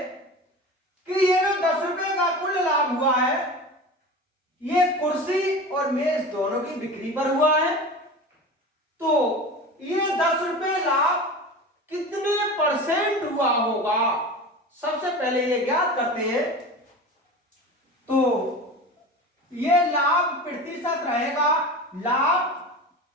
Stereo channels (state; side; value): normal; both; correlation 0.32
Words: कि ये जो 10 रुपए का कुल लाभ हुआ है ये कुर्सी और मेज दोनों की बिक्री पर हुआ है, तो ये 10 रुपए लाभ कितने परसेंट हुआ होगा, सबसे पहले ये ज्ञात करते हैं। तो ये लाभ प्रतिशत रहेगा लाभ